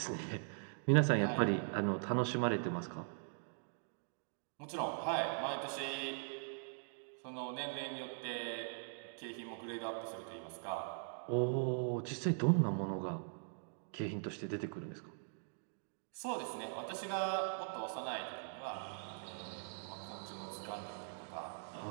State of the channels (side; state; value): left; silent; digital silence